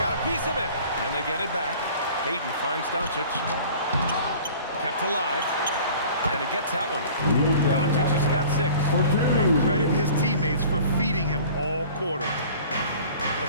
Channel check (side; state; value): both; inverted; correlation -0.46